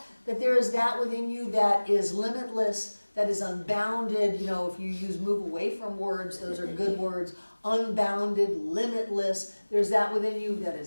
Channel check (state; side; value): inverted; both; correlation -1.00